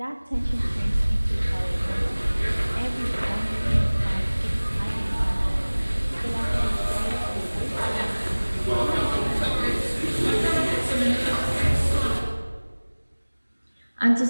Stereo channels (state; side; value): inverted; both; correlation -1.00